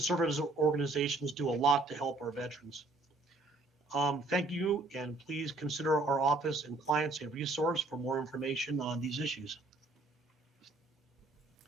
organizations do a lot to help our veterans. Thank you, and please consider our office and clients a resource for more information on these issues.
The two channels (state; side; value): quieter; left; 3.1 dB